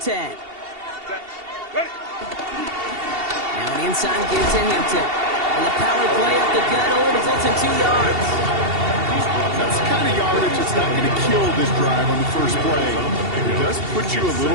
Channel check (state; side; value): late; left; 2.7 ms